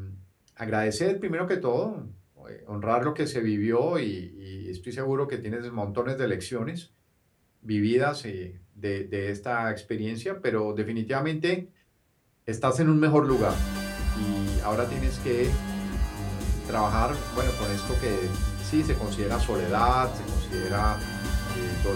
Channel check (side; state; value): both; identical; correlation 1.00